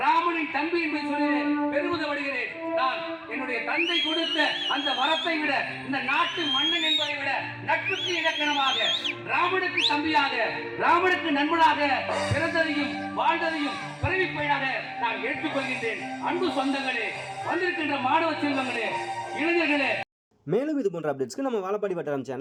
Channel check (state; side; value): identical; both; correlation 1.00